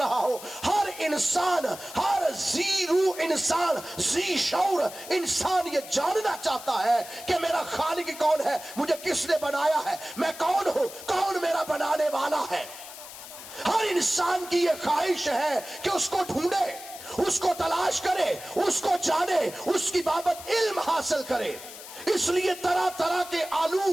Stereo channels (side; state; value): left; noise; hiss, 14 dB below the sound